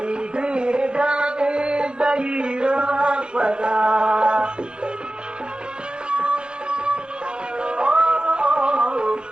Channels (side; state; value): left; late; 0.050 ms